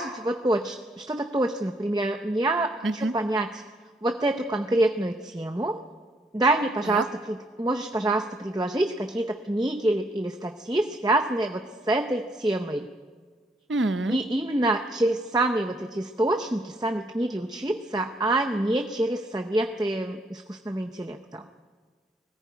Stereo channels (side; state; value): both; normal; correlation 0.70